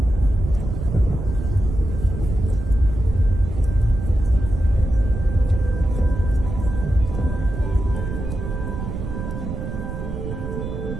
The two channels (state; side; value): noise; right; rumble, 6 dB below the sound